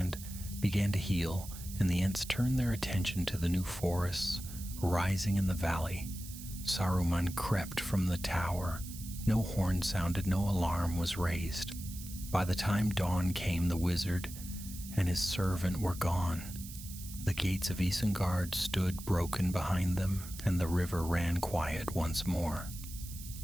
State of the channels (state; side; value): noise; right; hiss, 13 dB below the sound